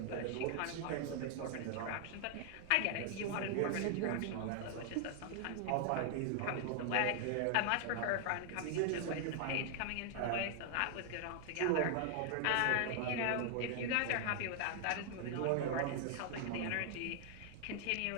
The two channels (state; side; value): different; both; correlation 0.00